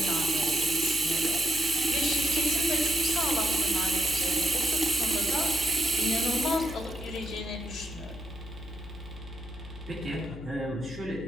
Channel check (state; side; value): noise; left; hum, 13 dB below the sound